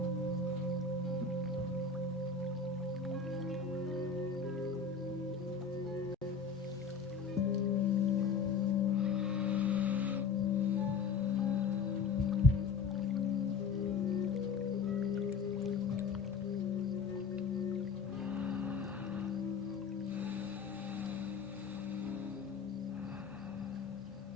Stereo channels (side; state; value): right; quieter; 5.4 dB